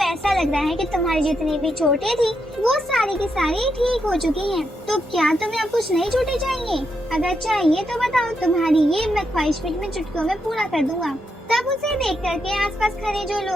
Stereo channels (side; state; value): both; normal; correlation 0.82